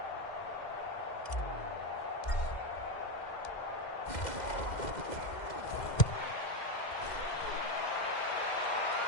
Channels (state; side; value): late; right; 2.1 ms